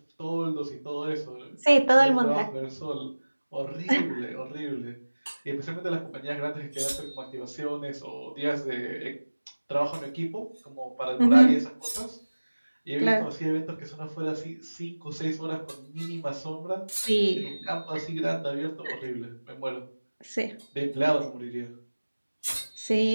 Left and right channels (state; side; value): inverted; both; correlation -1.00